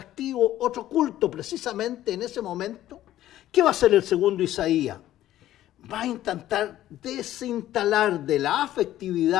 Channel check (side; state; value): right; quieter; 13.5 dB